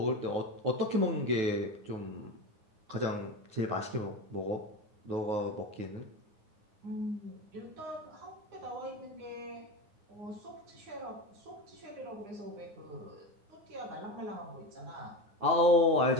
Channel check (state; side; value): late; left; 9.3 ms